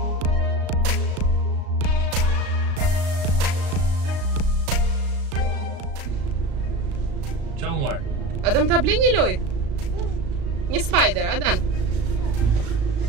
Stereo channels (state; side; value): late; left; 36 ms